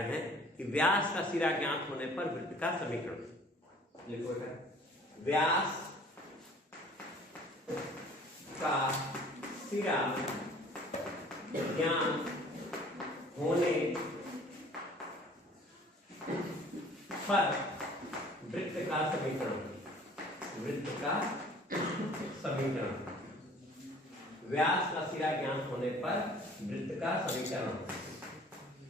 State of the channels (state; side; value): normal; both; correlation 0.51